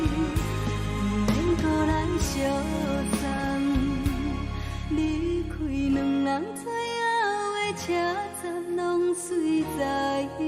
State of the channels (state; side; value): identical; both; correlation 1.00